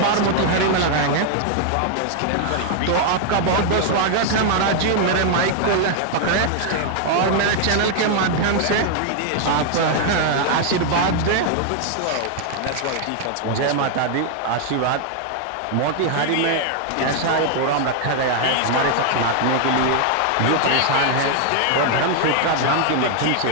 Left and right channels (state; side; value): different; both; correlation 0.00